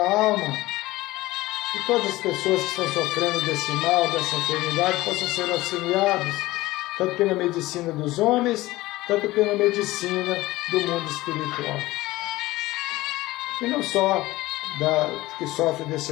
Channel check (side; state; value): right; quieter; 18.4 dB